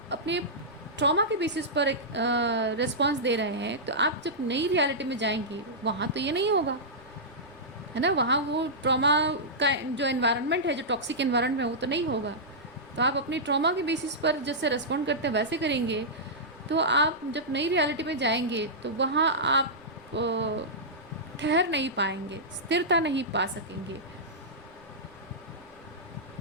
अपने ट्रॉमा के बेसिस पर एक रिस्पॉन्स दे रहे हैं, तो आप जब नई रियलिटी में जाएंगी वहाँ तो ये नहीं होगा, है ना, वहाँ वो ट्रॉमा का जो एनवायरनमेंट है, जो टॉक्सिक एनवायरनमेंट है, वो तो नहीं होगा। तो आप अपनी ट्रॉमा के बेसिस पर जैसे रिस्पॉन्ड करते हैं वैसे करेंगे, तो आप जब नई रियलिटी में जाएंगे तो वहाँ आप ठहर नहीं पाएंगे, स्थिरता नहीं पा सकेंगे,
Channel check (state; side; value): noise; right; rumble, 29 dB below the sound